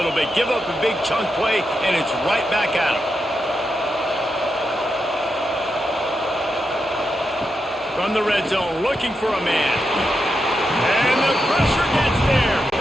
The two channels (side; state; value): both; normal; correlation 0.86